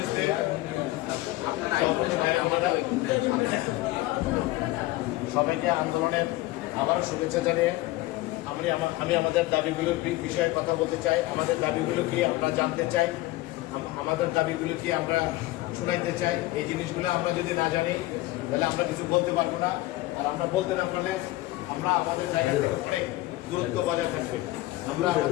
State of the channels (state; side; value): quieter; right; 18.4 dB